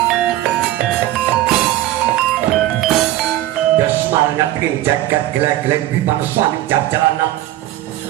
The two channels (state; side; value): quieter; left; 14.5 dB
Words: ing jagat geleng-geleng bimaneswani jajalanan